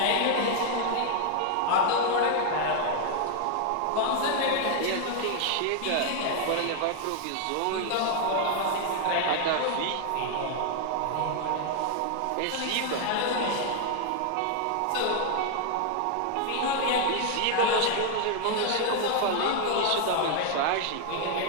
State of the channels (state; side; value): different; both; correlation 0.00